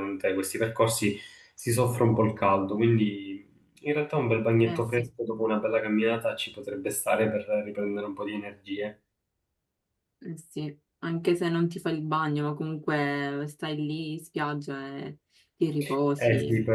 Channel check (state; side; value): identical; both; correlation 1.00